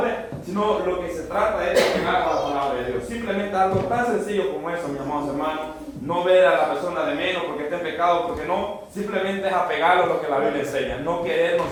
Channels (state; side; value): identical; both; correlation 1.00